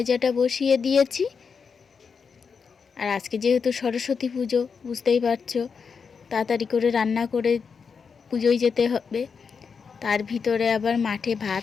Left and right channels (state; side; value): quieter; right; 5.8 dB